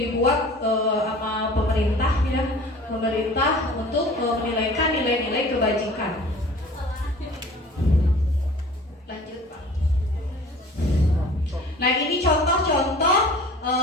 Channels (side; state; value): both; normal; correlation 0.45